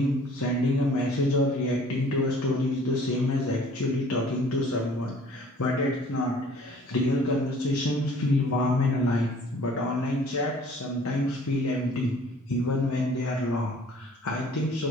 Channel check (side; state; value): both; normal; correlation 0.52